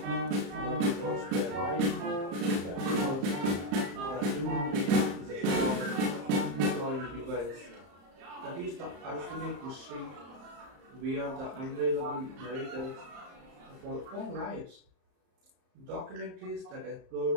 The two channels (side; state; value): left; late; 35 ms